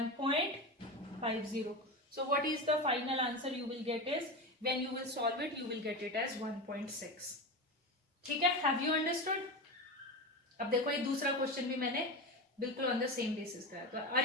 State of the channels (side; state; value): both; normal; correlation 0.22